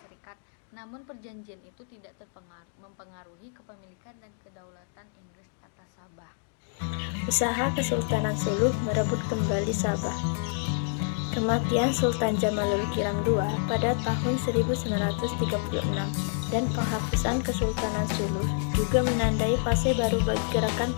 Serikat. Namun perjanjian itu tidak mempengaruhi kepemilikan dan kedaulatan Inggris atas Sabah. Usaha Kesultanan Sulu merebut kembali Sabah. Kematian Sultan Jamalul Kiram II pada tahun 1936 dan penghapusan Kesultanan Sulu juga menandai fase baru bagi gerakan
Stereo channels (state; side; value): silent; right; digital silence